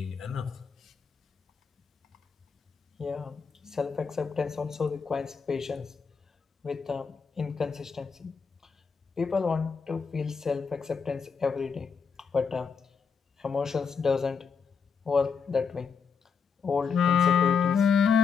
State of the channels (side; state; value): right; quieter; 5.8 dB